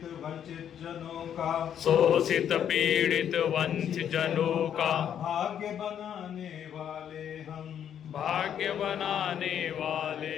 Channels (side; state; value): right; quieter; 9.3 dB